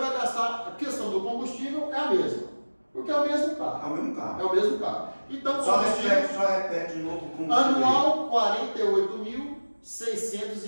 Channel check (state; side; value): inverted; both; correlation -1.00